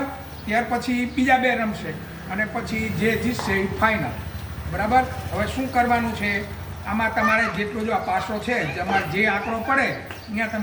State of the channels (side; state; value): both; identical; correlation 1.00